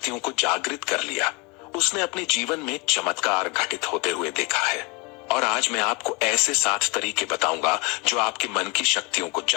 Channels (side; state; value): right; quieter; 27.2 dB